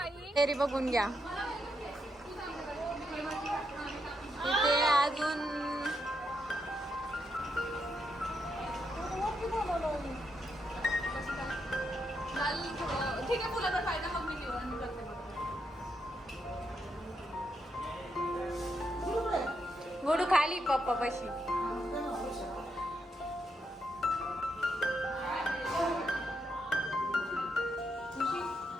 फेरी बघून घ्या. इथे अजून ठीक आहे तुला तर फायदा मग मी निवडून करते. गोडू खाली पप्पा पाशी.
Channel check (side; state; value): both; normal; correlation 0.81